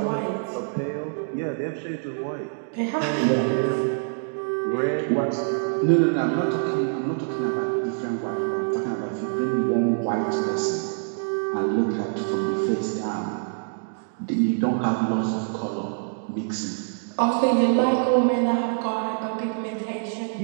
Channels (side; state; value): left; silent; digital silence